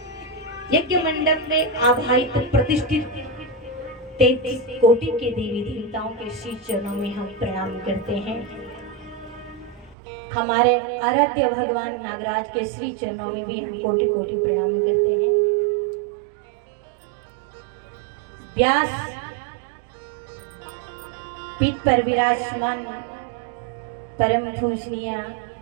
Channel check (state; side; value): drops out; left; at 10.0 s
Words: यज्ञ मंडप में आवाहित प्रतिष्ठित 33 कोटि के देवी देवताओं के श्री चरणों में हम प्रणाम करते हैं। हमारे आराध्य भगवान नागराज के श्री चरणों में भी हम कोटि कोटि प्रणाम करते हैं। व्यास पीठ पर विराजमान परम पूजनीय